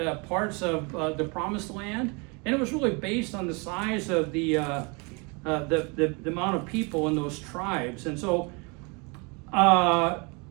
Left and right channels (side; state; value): left; quieter; 30.9 dB